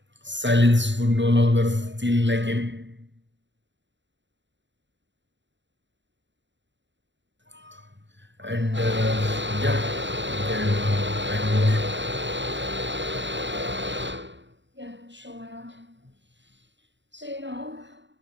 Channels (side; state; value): left; late; 0.53 ms